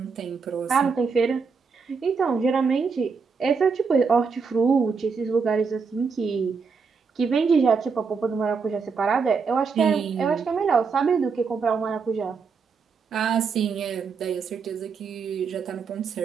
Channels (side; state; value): left; quieter; 5.3 dB